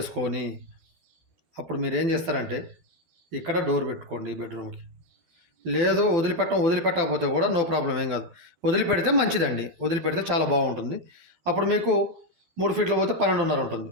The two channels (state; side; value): late; left; 12 ms